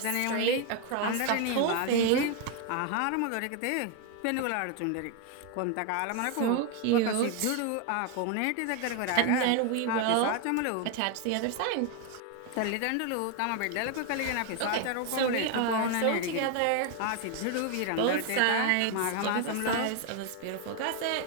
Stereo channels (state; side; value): different; both; correlation 0.01